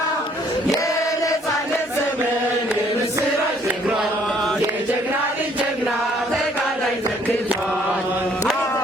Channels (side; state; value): both; normal; correlation 0.62